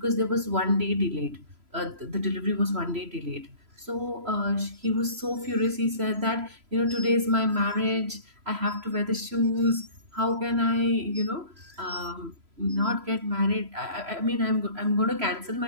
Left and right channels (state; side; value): late; left; 3.0 ms